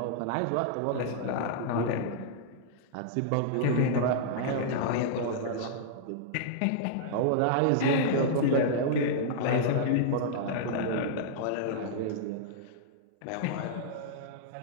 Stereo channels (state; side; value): different; both; correlation -0.02